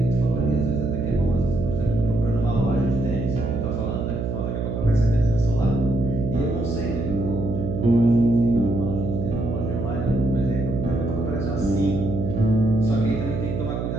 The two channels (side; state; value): right; noise; hum, 2 dB below the sound